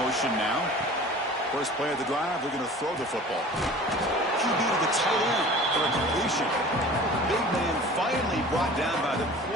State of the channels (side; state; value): both; normal; correlation 0.42